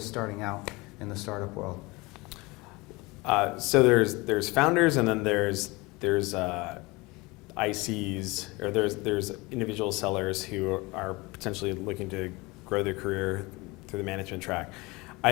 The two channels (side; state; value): right; quieter; 24.0 dB